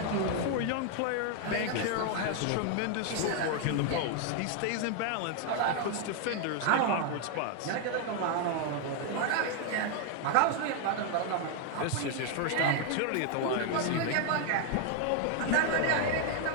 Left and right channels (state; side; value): different; both; correlation 0.00